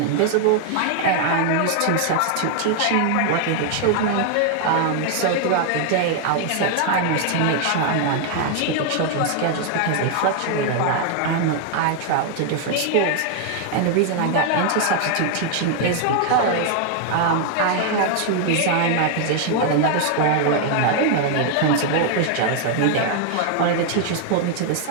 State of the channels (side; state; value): both; different; correlation 0.00